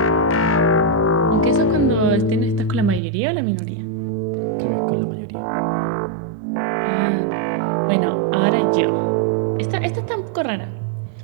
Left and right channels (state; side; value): drops out; left; at 3.0 s